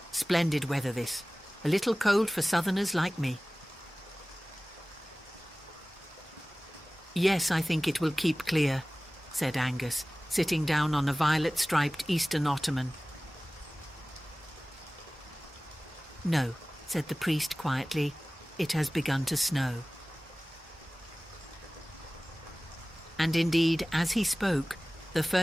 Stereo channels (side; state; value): both; normal; correlation 0.98